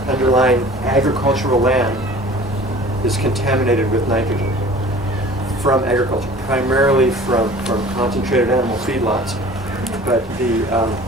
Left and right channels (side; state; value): both; normal; correlation 0.45